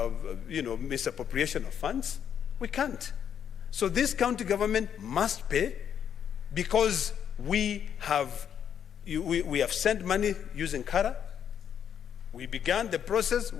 misappropriation of funds. We can't. So this county government must pay, because we have sent money using Kara. We began the process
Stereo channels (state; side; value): quieter; right; 8.7 dB